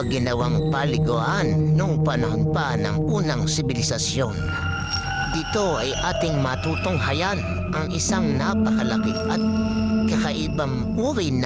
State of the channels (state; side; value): identical; both; correlation 1.00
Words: ginawang paliguan noong panahon pa ng unang sibilisasyon. Dito ay ating matutunghayan ang isang napakalaki at kakaibang uri